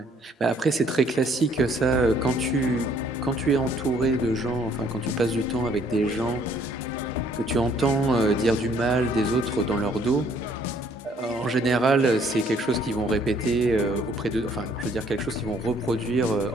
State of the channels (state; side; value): normal; both; correlation 0.62